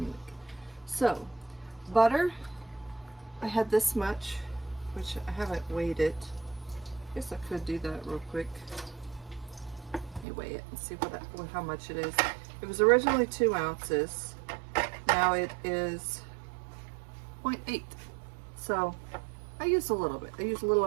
week. So, butter, I had this much, which I haven't weighed it. I guess I could do that real quick. Let me weigh it and see how much it is. It was originally 2 ounces. Now it is 0.8. So I used a little bit. I used a little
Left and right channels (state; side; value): drops out; left; at 10.2 s